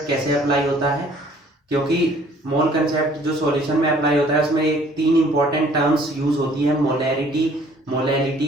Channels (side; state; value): both; normal; correlation 0.57